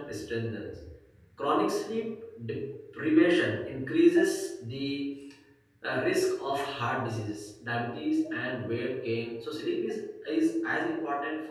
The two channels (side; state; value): both; identical; correlation 1.00